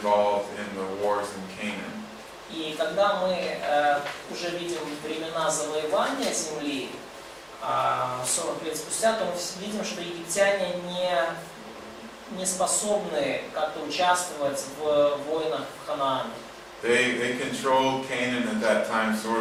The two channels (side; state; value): both; identical; correlation 1.00